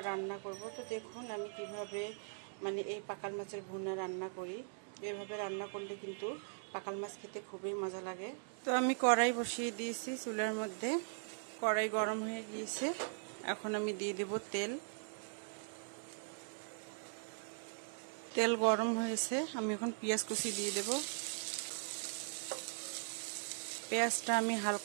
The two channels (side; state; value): left; silent; digital silence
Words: রান্না করব। তো দেখুন আমি কিভাবে মানে এই পাকাল মাছের ভুনা রান্না করি। এভাবে রান্না করলে কিন্তু পাকাল মাছ খেতে খুবই মজা লাগে। তো আমি কড়াই বসিয়ে দিয়েছি চুলার মধ্যে। কড়াই গরম হয়ে গিয়েছে, এখন আমি দিয়ে দেব তেল। তেল গরম হয়েছে, আমি এখন পেঁয়াজ কুচি দিয়ে দেব। পেঁয়াজটা আমি